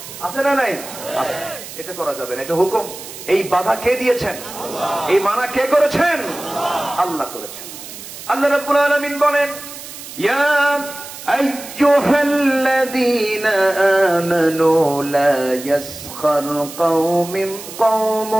আছে না নাই? এটা করা যাবে না, এটা হুকুম। এই বাধা কে দিয়েছেন? এই মানা কে করেছেন? আল্লাহ করেছেন। আল্লাহ রাব্বুল আলামিন বলেন, ইয়া আইয়ুহাল্লাযীনা আমানু লা ইয়াসখার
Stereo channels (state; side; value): noise; right; hiss, 13 dB below the sound